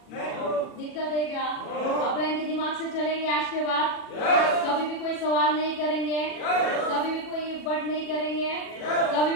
दिक्कत है क्या? अपलाइन के दिमाग से चलेंगे आज के बाद? कभी भी कोई सवाल नहीं करेंगे, कभी भी कोई बट नहीं करेंगे, कभी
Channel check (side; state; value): right; late; 40 ms